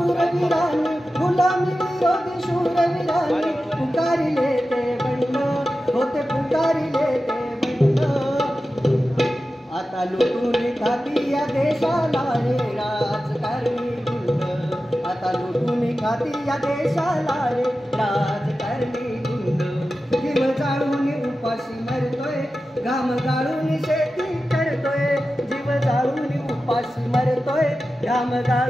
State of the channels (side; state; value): both; normal; correlation 0.93